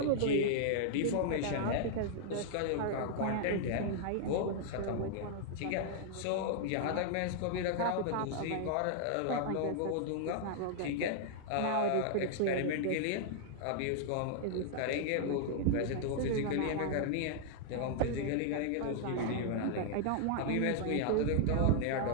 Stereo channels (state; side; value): different; both; correlation -0.01